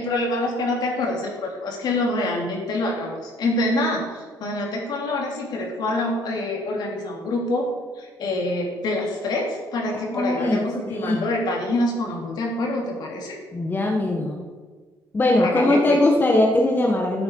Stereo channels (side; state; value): both; normal; correlation 0.69